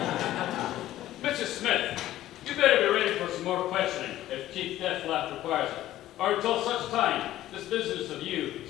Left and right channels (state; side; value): quieter; right; 14.1 dB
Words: Mrs. Smith, you better be ready for some more questioning if Chief Taft requires it. Or until such time, this business of you